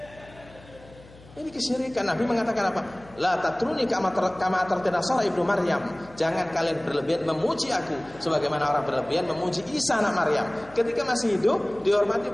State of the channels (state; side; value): noise; left; hum, 22 dB below the sound